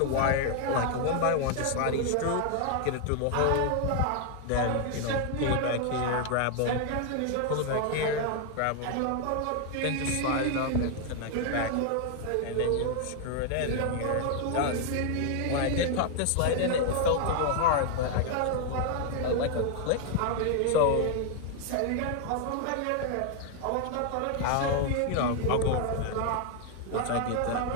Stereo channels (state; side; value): different; both; correlation 0.00